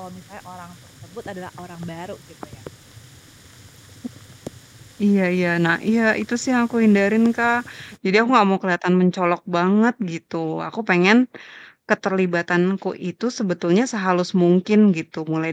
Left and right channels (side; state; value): both; identical; correlation 1.00